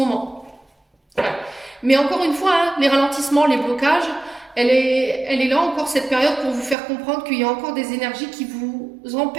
Voilà. Mais encore une fois, hein, les ralentissements, les blocages, elle est là encore cette période pour vous faire comprendre qu'il y a encore des énergies qui vous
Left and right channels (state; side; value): drops out; left; at 6.8 s